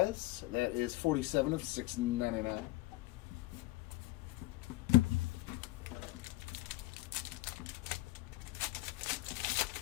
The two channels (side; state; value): right; quieter; 18.4 dB